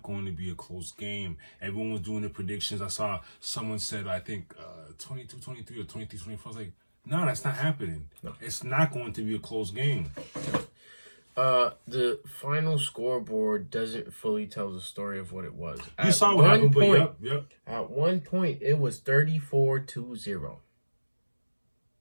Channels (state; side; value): inverted; both; correlation -1.00